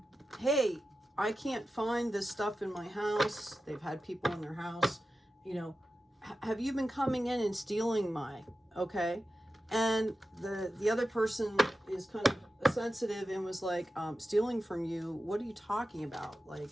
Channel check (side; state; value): both; normal; correlation 0.92